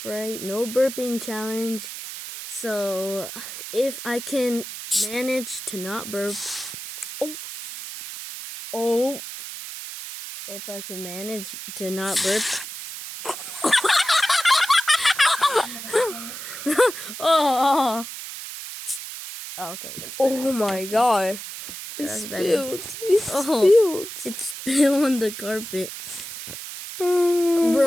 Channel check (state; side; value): noise; right; hiss, 9 dB below the sound